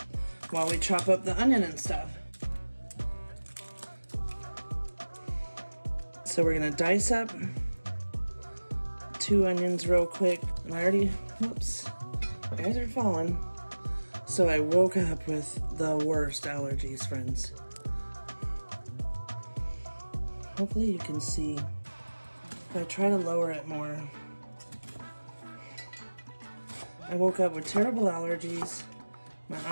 while we chop up the onion and stuff. So we're gonna dice up 2 onions real quick. And I already, whoops, you guys are falling. So I woke up with the worst allergies, friends. Hopefully you can see. If I try to lower it more. I woke up with terrible allergies. My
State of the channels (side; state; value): both; inverted; correlation -1.00